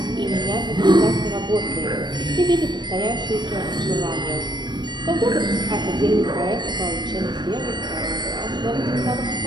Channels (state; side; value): late; left; 0.22 ms